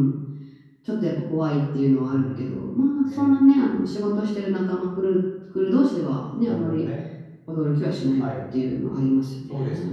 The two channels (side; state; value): both; identical; correlation 1.00